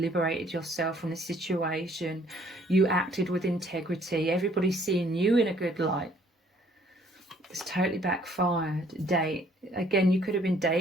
yourself from the situation. You acted with integrity. Everybody's seeing you in a good light. It's totally backfired. Date. Again, you could have been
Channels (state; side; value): normal; both; correlation 0.61